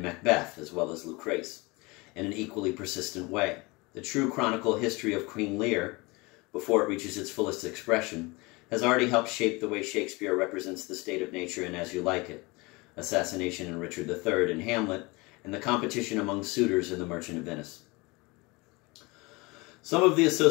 Macbeth, as well as Lucrece, in an equally persistent way. The true chronicle history of Queen Lear, before it reaches its fullest expression, has already helped shape the way Shakespeare represents the state of nature in As You Like It, assassination in Richard III in Hamlet, and the competition among suitors in The Merchant of Venice. Some of the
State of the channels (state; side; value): quieter; right; 25.0 dB